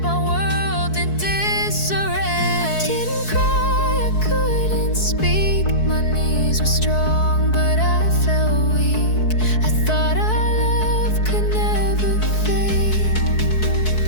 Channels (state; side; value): late; right; 4.6 ms